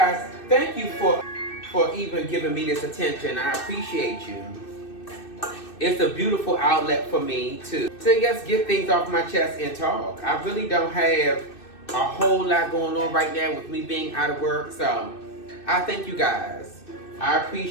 thank you for even giving me this attention. I appreciate you. It's a beautiful outlet for me to just get things off my chest and talk. I really don't have a whole lot going on right now with me being out of work. So I thank you guys. I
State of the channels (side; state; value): right; late; 2.6 ms